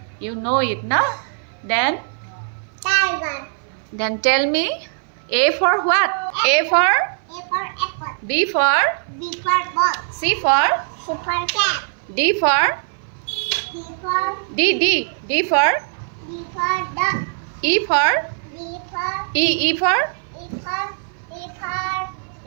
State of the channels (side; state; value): left; silent; 59 dB below the other